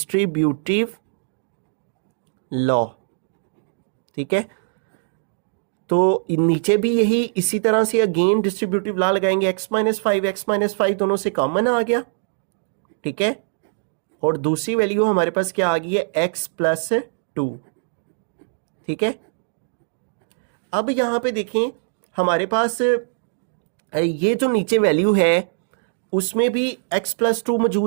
लॉ, ठीक है। तो नीचे भी यही इसी तरह से अगेन डिस्ट्रीब्यूटिव लॉ लगाएंगे, x - 5 दोनों से कॉमन आ गया, ठीक है, और दूसरी वैल्यू हमारे पास क्या आ गई है, x + 2, ठीक है। अब यहां पे देखें हमारे पास ये जो नीचे वैल्यू है उसमें भी x + 2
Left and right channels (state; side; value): silent; left; digital silence